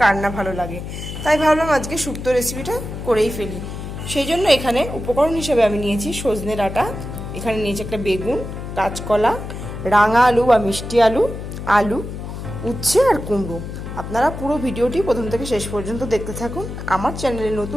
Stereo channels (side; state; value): left; noise; hum, 8 dB below the sound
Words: কার না ভালো লাগে, তাই ভাবলাম আজকে শুক্তো রেসিপিটা করেই ফেলি। সেই জন্য এখানে উপকরণ হিসেবে আমি নিয়েছি সজনে ডাঁটা, এখানে নিয়েছি একটা বেগুন, কাঁচকলা, রাঙা আলু বা মিষ্টি আলু, আলু, উচ্ছে আর কুমড়ো। আপনারা পুরো ভিডিওটি প্রথম থেকে শেষ পর্যন্ত দেখতে থাকুন। আমার চ্যানেলে